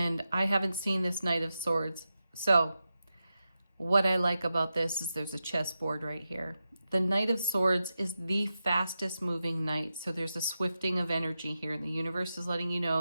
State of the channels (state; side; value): inverted; both; correlation -0.90